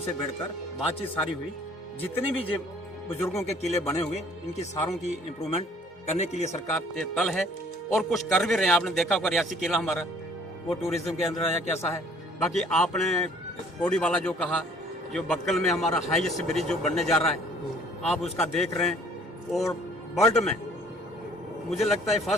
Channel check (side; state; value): both; normal; correlation 0.56